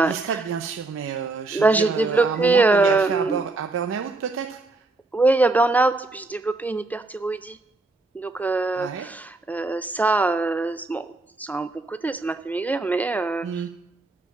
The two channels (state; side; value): quieter; left; 3.2 dB